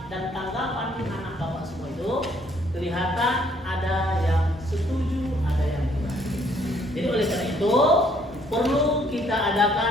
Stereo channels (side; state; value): both; normal; correlation 0.65